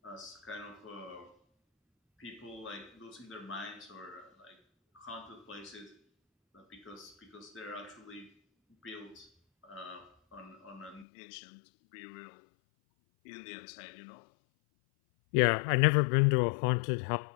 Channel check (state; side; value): drops out; right; at 11.1 s